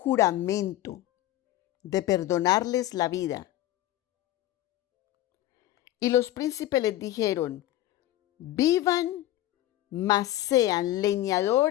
de perdonarles la vida. Y los príncipes les dijeron: vivan, mas sean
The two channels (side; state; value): right; quieter; 14.5 dB